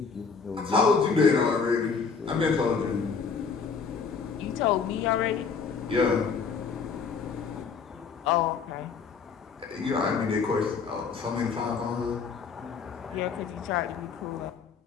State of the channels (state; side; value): quieter; right; 5.5 dB